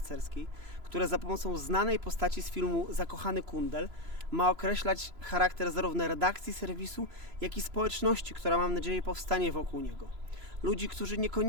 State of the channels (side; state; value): left; late; 3.0 ms